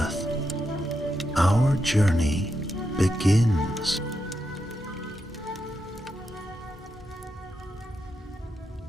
Our journey begins.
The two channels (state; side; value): normal; both; correlation 0.85